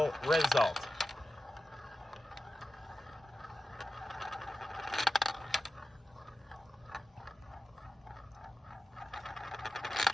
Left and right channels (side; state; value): both; normal; correlation 0.93